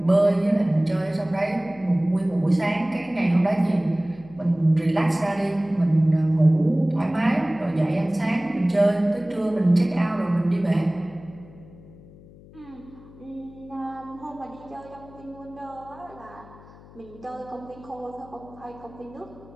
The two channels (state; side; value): noise; left; hum, 22 dB below the sound